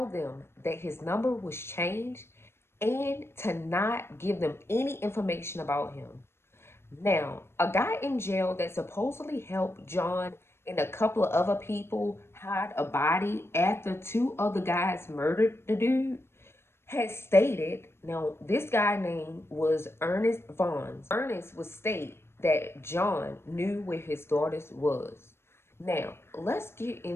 them that his number was changed and to not give them any information about him. Now, a guy in jail that supposedly helped John and a couple of other people hide a body after two other guys murdered the dude had stated, now this guy name was Ernest Vaughn. Ernest would state that John knew where his daughters was. Now, let's get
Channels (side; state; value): right; late; 0.12 ms